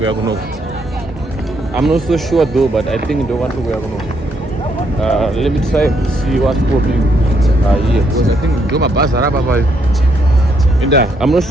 are going to. I'm not so sure though, but I think in the one we are going to. Let me try to see what's popping here. Because I think do my bus I'm not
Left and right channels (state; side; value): normal; both; correlation 0.74